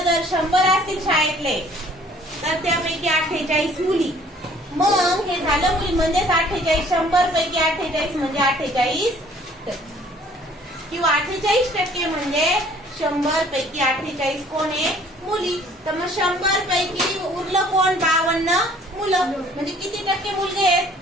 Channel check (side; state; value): both; normal; correlation 0.56